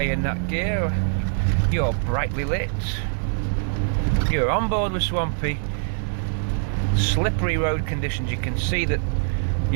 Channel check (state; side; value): silent; left; 58 dB below the other